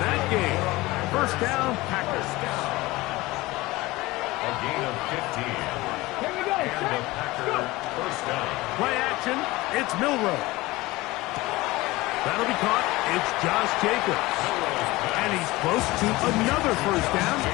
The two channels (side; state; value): right; quieter; 20.1 dB